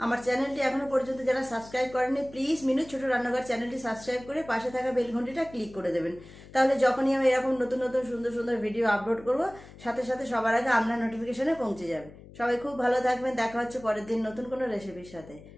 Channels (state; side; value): noise; left; hum, 19 dB below the sound